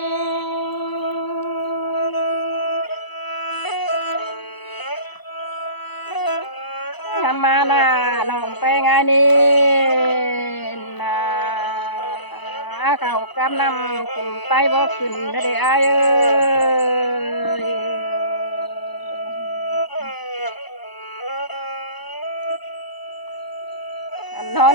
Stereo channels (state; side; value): late; right; 1.0 ms